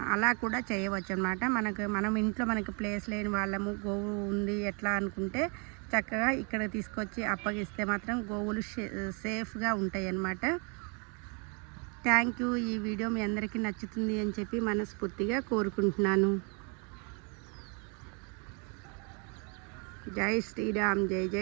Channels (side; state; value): left; quieter; 35.2 dB